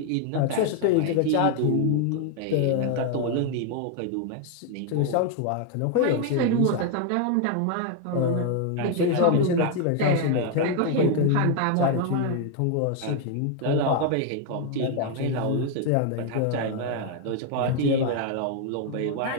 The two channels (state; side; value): different; both; correlation 0.01